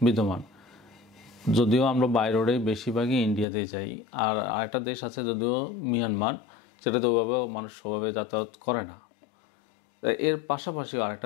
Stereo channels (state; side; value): drops out; right; at 3.5 s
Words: বিদ্যমান। যদিও আমরা বাই রোডে বেশিরভাগই ইন্ডিয়াতেই যাই, আর আরেকটা দেশ আছে যদিও মিয়ানমার, যেটাতে ওইভাবে মানুষ ওভাবে যাতায়াত করে না। এর পাশাপাশিও